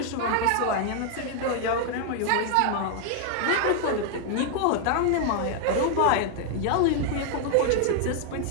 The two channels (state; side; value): different; both; correlation 0.00